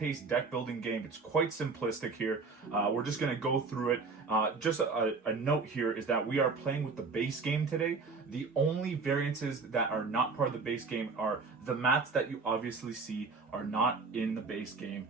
deck-building game. It's quite simplistic here. We're just going to go through it. Just a note here is that we are playing with the base game today. The only variances that are not part of the base game are the mats that you obviously see are not in the base game.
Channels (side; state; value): left; quieter; 4.3 dB